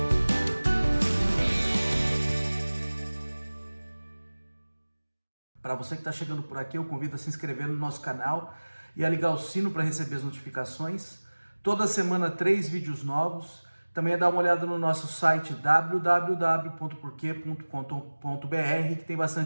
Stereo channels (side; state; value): both; inverted; correlation -1.00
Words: Para você que está chegando por aqui, eu convido a se inscrever no nosso canal e a ligar o sino para receber as notificações. Toda semana 3 vídeos novos. Também é dar uma olhada no nosso site www.porquê.com.br, que tem